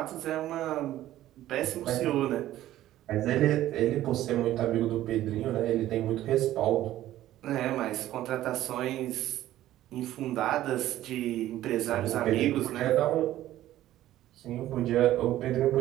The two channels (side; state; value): left; quieter; 13.9 dB